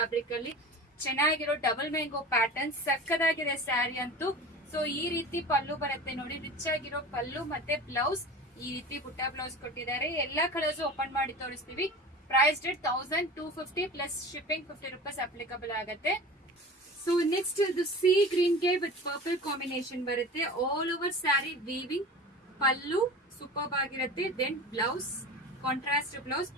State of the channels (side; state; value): both; normal; correlation 0.36